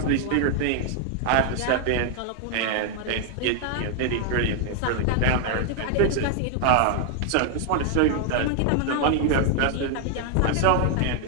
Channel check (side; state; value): both; different; correlation 0.00